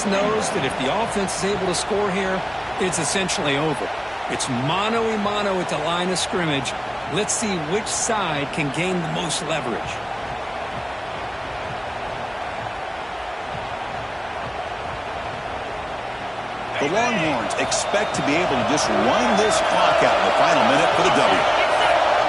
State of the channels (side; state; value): both; identical; correlation 1.00